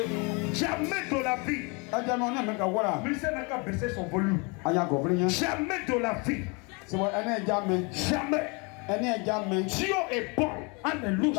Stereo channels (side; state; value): right; quieter; 30.9 dB